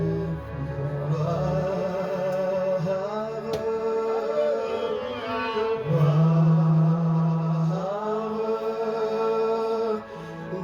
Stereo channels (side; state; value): both; identical; correlation 1.00